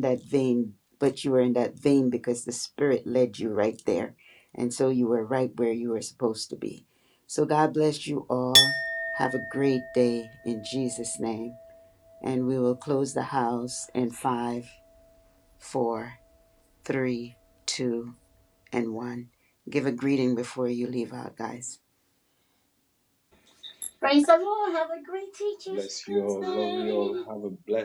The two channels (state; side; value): identical; both; correlation 1.00